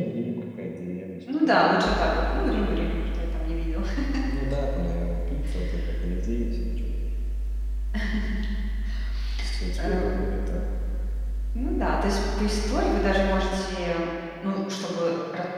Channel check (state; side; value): identical; both; correlation 1.00